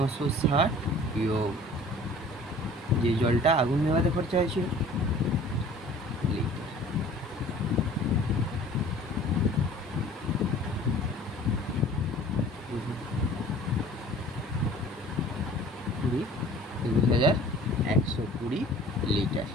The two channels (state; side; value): normal; both; correlation 0.48